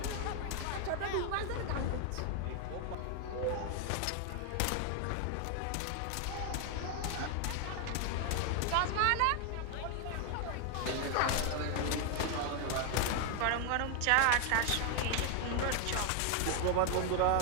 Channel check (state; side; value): different; both; correlation 0.00